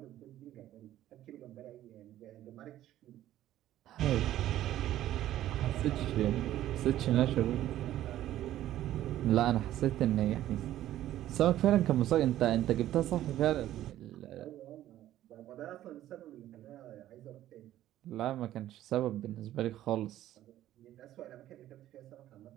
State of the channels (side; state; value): left; quieter; 13.2 dB